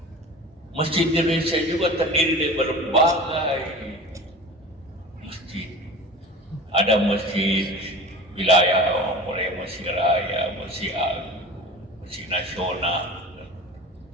Masjid Indonesia juga terdiri dari berbagai masjid. Ada masjid wilayah, mulai masjid raya, masjid agung, masjid nasional,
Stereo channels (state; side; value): normal; both; correlation 0.36